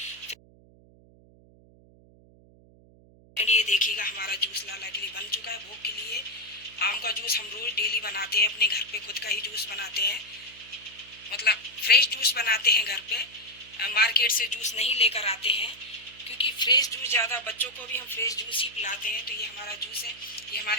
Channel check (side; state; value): right; noise; hum, 26 dB below the sound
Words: ये देखिएगा, हमारा जूस लाला के लिए बन चुका है भोग के लिए। आम का जूस हम रोज डेली बनाते हैं, अपने घर पे खुद का ही जूस बनाते हैं, मतलब फ्रेश जूस बनाते हैं घर पे। मार्केट से जूस नहीं लेकर आते हैं क्योंकि फ्रेश जूस ज़्यादा, बच्चों को भी हम फ्रेश जूस ही पिलाते हैं। तो ये हमारा जूस है, ये